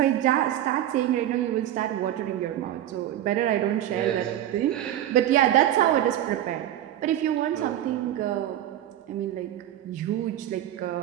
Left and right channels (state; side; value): quieter; left; 12.1 dB